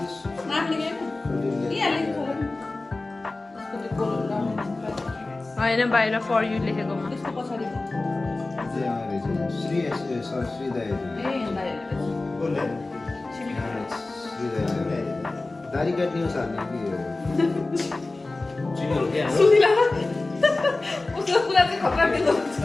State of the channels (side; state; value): right; quieter; 3.2 dB